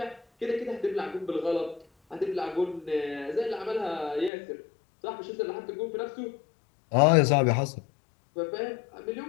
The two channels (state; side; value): drops out; right; at 4.3 s